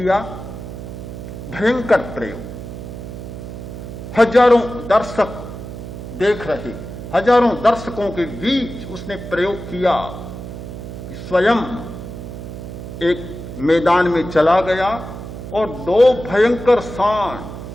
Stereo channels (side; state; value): right; noise; hum, 10 dB below the sound